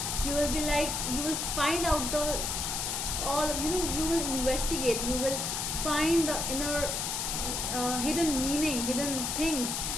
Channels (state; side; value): noise; left; hiss, 1 dB below the sound